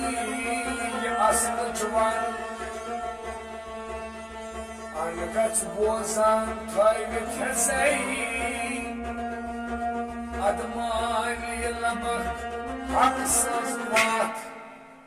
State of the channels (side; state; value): both; identical; correlation 1.00